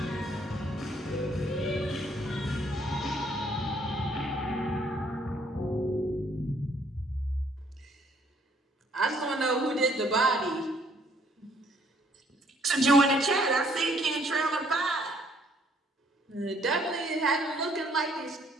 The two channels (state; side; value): normal; both; correlation 0.65